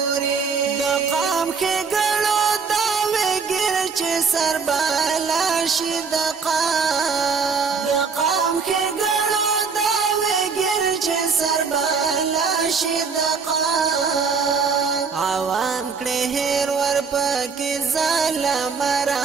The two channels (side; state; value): left; quieter; 5.4 dB